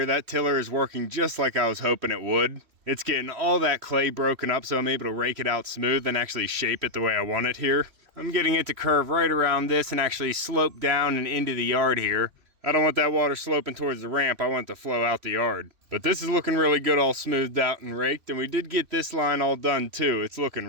That tiller is working just like I was hoping it would. It's getting all that clay broken up so I'm able to rake it out smooth and actually shape it the way I want it here. I'm getting it to curve right around this and actually slope down and into the yard here. I don't want that water sloping towards the ramp. I want it to flow out the yard. But this is looking really good, all smoothed out and raked. And we did get this line all done too. It's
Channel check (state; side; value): late; left; 3.1 ms